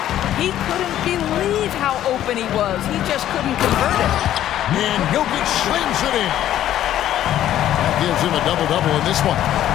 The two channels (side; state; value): right; quieter; 12.1 dB